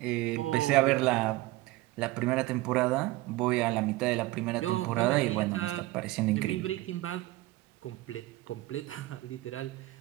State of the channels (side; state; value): left; quieter; 18.6 dB